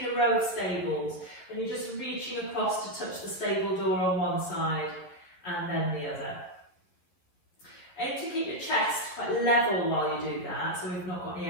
a row of stables and you're just reaching across to touch the stable door on one side and then the other. Aim to keep your chest quite level while you do that, so we've not got any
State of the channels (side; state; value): right; late; 11 ms